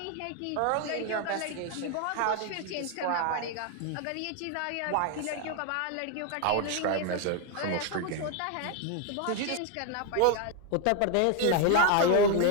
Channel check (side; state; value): both; different; correlation 0.01